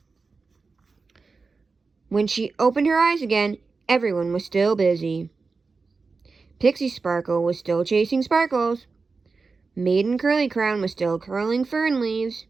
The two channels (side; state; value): left; quieter; 4.3 dB